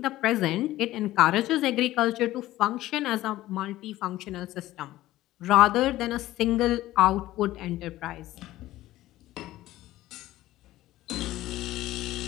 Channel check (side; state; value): right; quieter; 15.7 dB